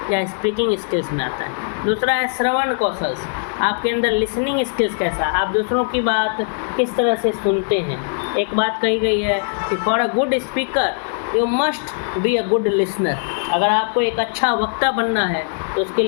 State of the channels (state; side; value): silent; right; digital silence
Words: या स्पीकिंग स्किल्स में आता है। दूसरा है श्रवण कौशल, आपके अंदर लिसनिंग स्किल्स कैसा, आप दूसरों की बात किस तरह से सुनते हैं। एक बात कही गई है कि for a good speaker you must be a good listener. अगर आपको एक अच्छा वक्ता बनना है तो उसके